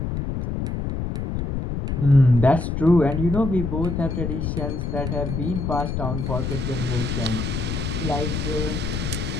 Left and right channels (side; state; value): left; noise; rumble, 2 dB below the sound